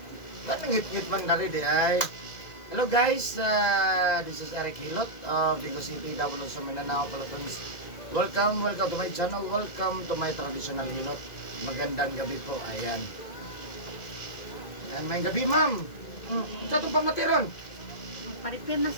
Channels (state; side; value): late; right; 2.0 ms